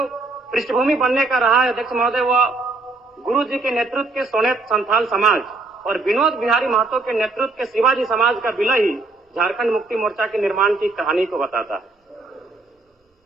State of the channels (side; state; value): left; quieter; 3.5 dB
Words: पृष्ठभूमि बनने का रहा है, अध्यक्ष महोदय, वह गुरु जी के नेतृत्व के सोनेत संथाल समाज और विनोद बिहारी महतो के नेतृत्व के शिवाजी समाज का विलय ही झारखंड मुक्ति मोर्चा के निर्माण की कहानी को बताता है।